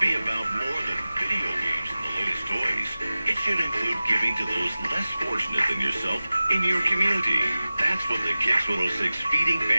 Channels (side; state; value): both; inverted; correlation -0.96